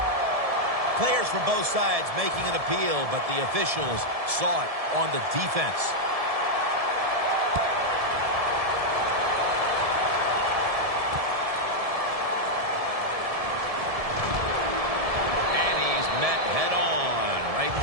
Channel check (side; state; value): left; late; 1.7 ms